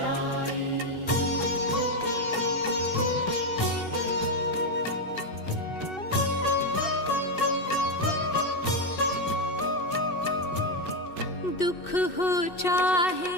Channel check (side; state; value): right; late; 2.6 ms